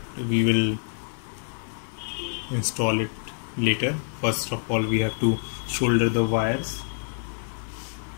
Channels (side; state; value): right; silent; 60 dB below the other